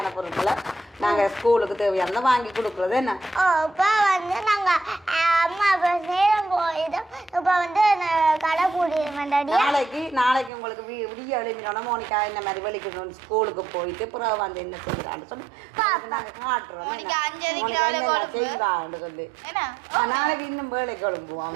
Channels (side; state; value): left; drops out; at 10.5 s